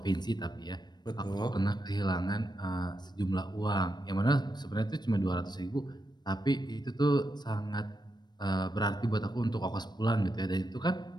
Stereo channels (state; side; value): late; right; 0.21 ms